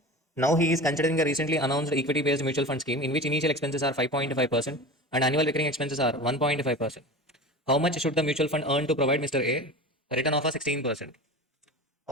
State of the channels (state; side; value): normal; both; correlation 0.32